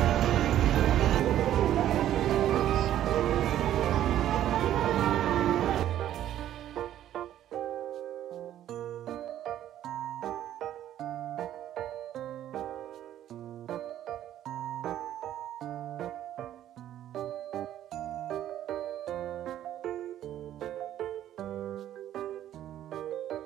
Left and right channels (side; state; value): left; quieter; 11.9 dB